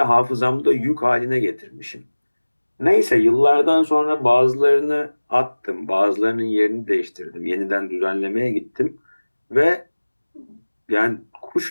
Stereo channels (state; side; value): inverted; both; correlation -1.00